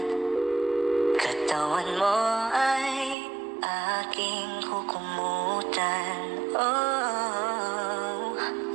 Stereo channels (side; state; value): left; drops out; at 3.2 s